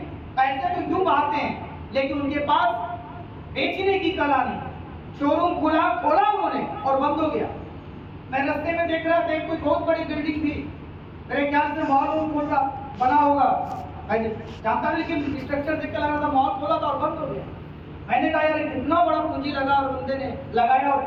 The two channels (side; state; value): both; identical; correlation 1.00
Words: पैसे तो यूं आते हैं लेकिन उनके पास बेचने की कला नहीं। शोरूम खोला उन्होंने और बंद हो गया। मैं रास्ते में देख रहा था कोई बहुत बड़ी बिल्डिंग थी, मेरे ख्याल से मॉल खोल रहा बना होगा, जानता नहीं लेकिन स्ट्रक्चर देख के लगा था मॉल खोला था और बंद हो गया। मैंने कहा यार कितना बड़ा पूंजी लगा और बंदे ने लगाया और